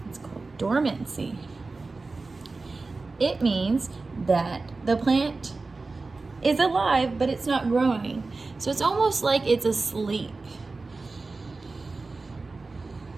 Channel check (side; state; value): left; quieter; 3.7 dB